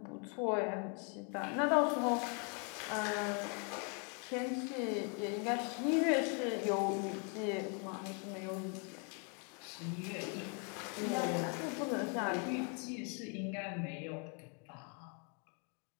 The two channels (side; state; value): right; quieter; 37.6 dB